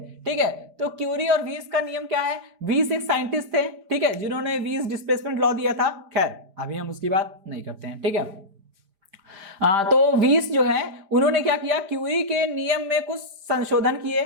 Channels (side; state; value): left; late; 5.0 ms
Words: ठीक है, तो क्यूरी और वीन्स का नियम क्या है? वीन्स एक साइंटिस्ट थे, ठीक है, जिन्होंने वीन्स डिस्प्लेसमेंट लॉ दिया था। खैर अभी हम उसकी बात नहीं करते हैं। ठीक है, तो वीस जो है उन्होंने क्या किया? क्यूरी के नियम में कुछ संशोधन किए।